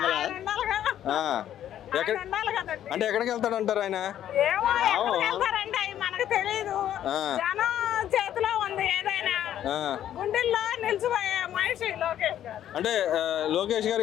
అంటే ఎక్కడికి వెళ్తాడు అంటారు ఆయన? మనకు తెలీదు. జనం చేతిలో ఉంది ఏదైనా. గుండెల్లో నిలిచిపోయే మనిషి లోకేష్ గారు. అంటే లోకేష్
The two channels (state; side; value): quieter; right; 11.1 dB